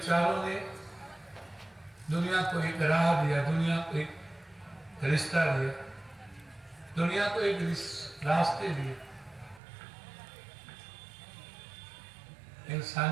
ने दुनिया को एक राह दिया, दुनिया को एक रिश्ता दिया, दुनिया को एक रास्ते दिए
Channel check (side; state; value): left; drops out; at 9.6 s